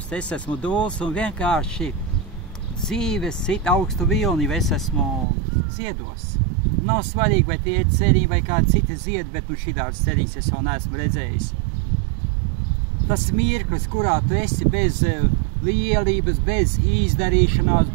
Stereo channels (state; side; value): drops out; left; at 5.2 s